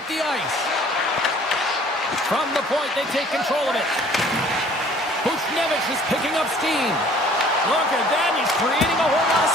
the ice. From the point, they take control of it. Buchnevich is picking up steam. Look at that, he's creating a whole lot of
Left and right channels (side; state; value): both; normal; correlation 0.54